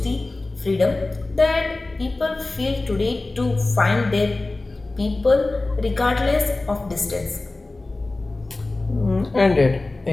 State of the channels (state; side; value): quieter; right; 3.1 dB